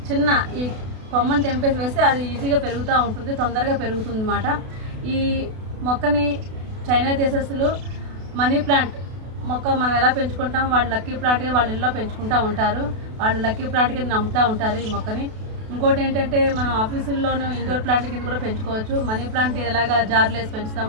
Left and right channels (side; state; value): left; late; 32 ms